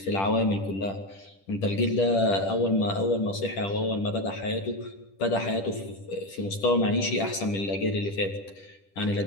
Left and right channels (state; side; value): late; right; 10 ms